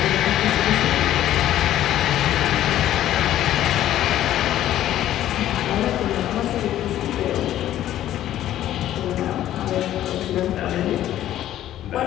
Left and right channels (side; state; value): right; quieter; 12.6 dB